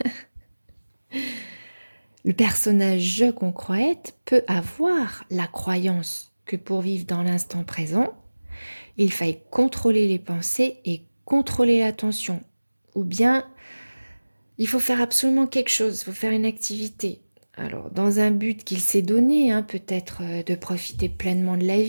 Le personnage je qu'on croit être peut avoir la croyance que pour vivre dans l'instant présent, il faille contrôler les pensées et contrôler l'attention. Ou bien, il faut faire absolument quelque chose, il faut faire une activité. Alors, dans un but qu'il s'est donné, peut-être de profiter pleinement de la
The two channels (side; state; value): both; inverted; correlation -1.00